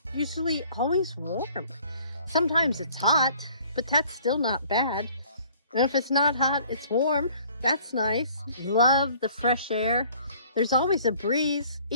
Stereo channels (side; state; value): both; inverted; correlation -0.55